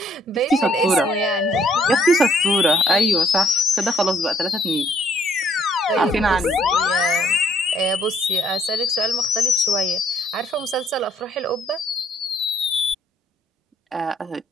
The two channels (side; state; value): both; normal; correlation 0.66